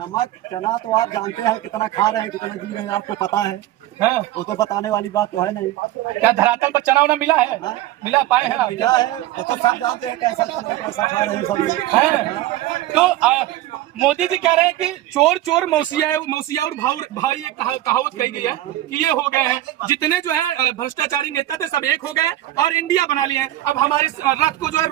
चना तो आप जानते हैं कितना खा रहे हैं, कितना जी रहे हैं, आपको पता है। हाँ। वो तो बताने वाली बात तो है नहीं। क्या धरातल पर चना उना मिला है? हाँ। मिला पाए हैं आप? मिला है, वो तो सब जानते हैं कैसा चल रहा है, कैसा खा रहे हैं सब लोग। हैं। तो मोदी जी कह रहे हैं कि चोर चोर मौसिया और भाई एक कहावत कही गई है कि ये हो गए हैं, जितने जो है भ्रष्टाचारी नेता थे सब एक हो गए और इंडिया बना लिए हैं। अब हमारे रथ को जो है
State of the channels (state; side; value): quieter; left; 14.6 dB